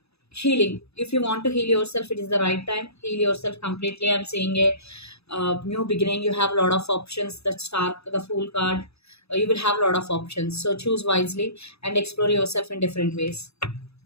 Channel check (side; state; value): right; late; 0.79 ms